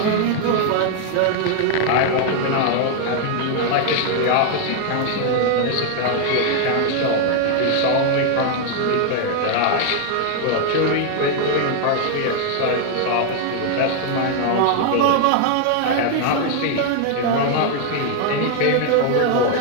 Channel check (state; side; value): different; both; correlation 0.00